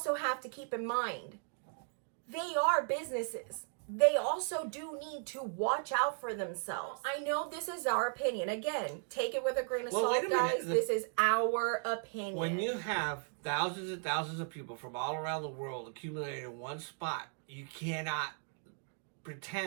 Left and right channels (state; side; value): silent; left; 54 dB below the other